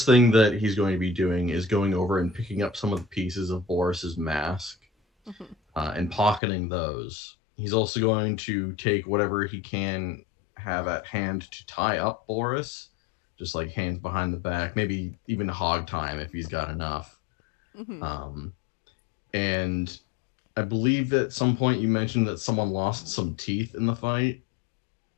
thing that he's going to be doing is going over and picking up some of the pieces of Boris's mask and pocketing those. He's also going to take whatever he can have at hand to tie up Boris, just like hands behind the back, maybe even hog time if he's got enough. And I believe at some point you mentioned that someone lost some teeth in the fight.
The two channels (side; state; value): right; drops out; at 6.4 s